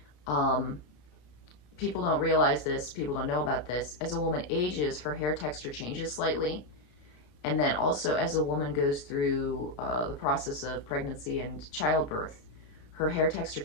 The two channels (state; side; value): late; right; 33 ms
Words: People don't realize this, people don't know about this. As a woman ages, her hair texture changes slightly. And then also, as a woman goes through the process of pregnancy and childbirth, her hair texture